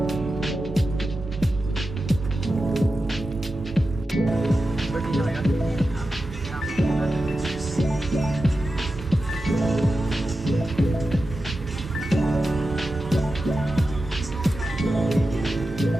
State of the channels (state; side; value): normal; both; correlation 0.92